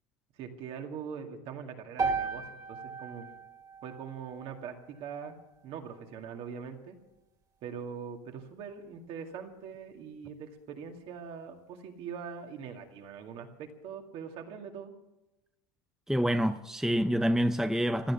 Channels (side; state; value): both; normal; correlation 0.79